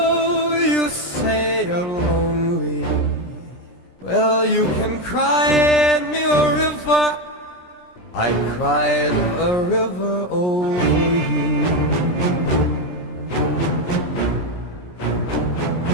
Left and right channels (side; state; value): right; late; 17 ms